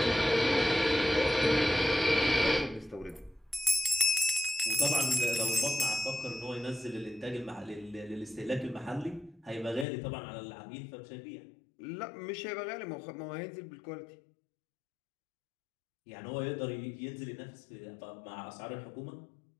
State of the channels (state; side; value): drops out; right; at 9.9 s